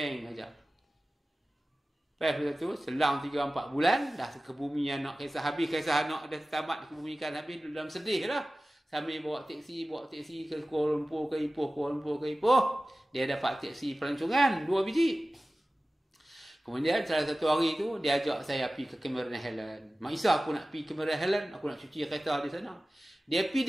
aja. Lepas tu, selang 3-4 bulan, dah ke bumi anak kisah habis, kisah anak dah tamat kebumikan habis, dalam sedih lah. Sambil bawa teksi ke Kuala Lumpur ke Ipoh, dia dapat teksi pelancongan 2 biji. Kemudian salah satu hari tu, dia ajak saya pergi ke Cameron Highland. Mak Isa, aku nak pergi Cameron Highland, aku nak cuci kereta di sana. Dia pergi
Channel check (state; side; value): normal; both; correlation 0.96